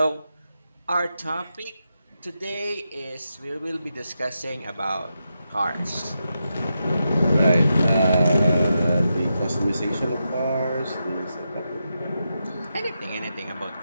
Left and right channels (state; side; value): inverted; both; correlation -0.87